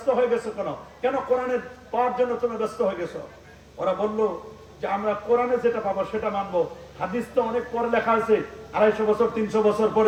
হয়ে গেছো কেন? কেন কোরআনের পাওয়ার জন্য তোমরা ব্যস্ত হয়ে গেছো? ওরা বলল যে আমরা কোরআনে যেটা পাবো সেটা মানবো, হাদিস তো অনেক পরে লেখা আছে, 250 বছর 300 বছর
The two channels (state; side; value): identical; both; correlation 1.00